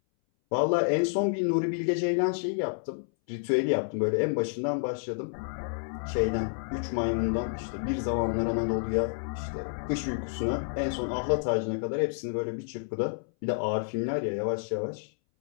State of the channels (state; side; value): silent; right; 58 dB below the other